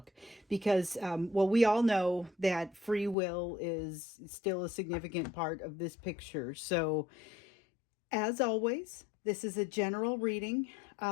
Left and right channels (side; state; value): right; drops out; at 3.2 s